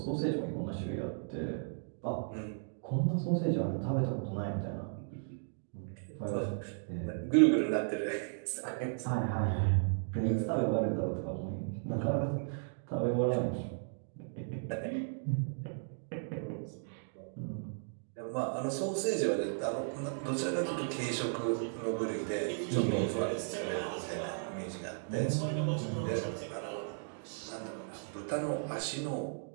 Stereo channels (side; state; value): left; silent; digital silence